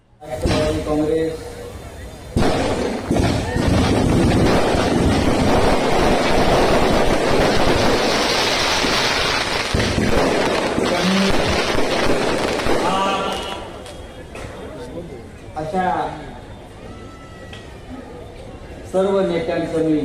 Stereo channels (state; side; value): identical; both; correlation 1.00